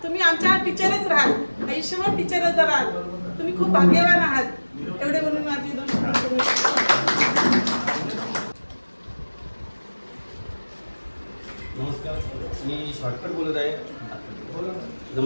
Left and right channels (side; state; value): both; inverted; correlation -1.00